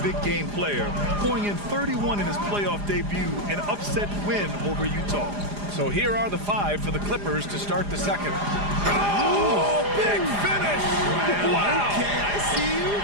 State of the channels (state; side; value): late; left; 4.9 ms